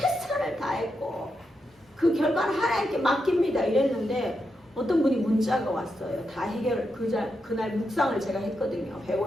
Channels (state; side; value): normal; both; correlation 0.85